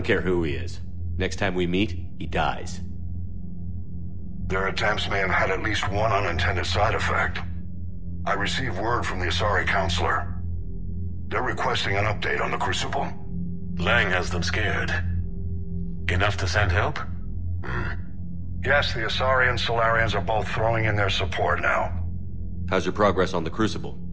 care who he is. Next time we meet, he dies. Their attempts may have had at least one unintended side effect. I received word from the Asari Counselor. They're requesting an update on the Crucible. Lang has them scared. Enough to send help? Yes, the Asari and Solarians are both throwing in their support now. How's your progress on the Crucible?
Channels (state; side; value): identical; both; correlation 1.00